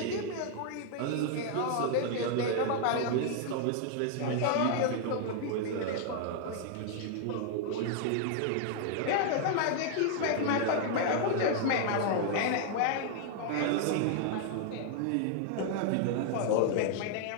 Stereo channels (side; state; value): both; different; correlation 0.00